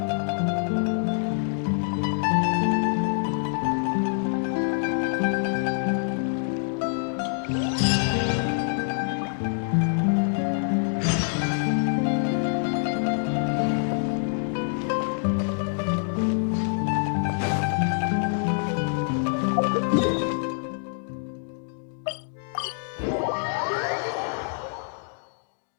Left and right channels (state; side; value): silent; right; digital silence